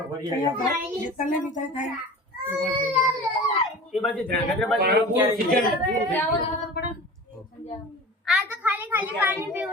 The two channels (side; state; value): both; normal; correlation 0.37